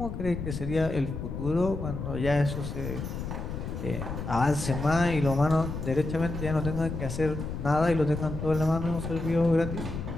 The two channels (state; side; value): noise; left; rumble, 6 dB below the sound